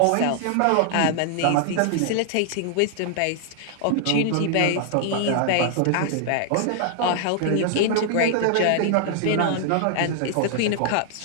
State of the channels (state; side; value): different; both; correlation -0.01